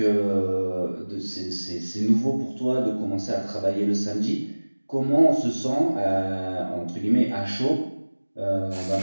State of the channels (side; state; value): both; inverted; correlation -1.00